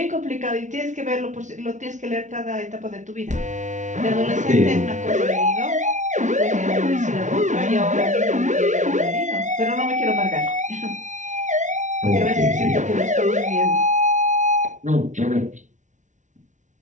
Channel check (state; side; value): late; left; 0.36 ms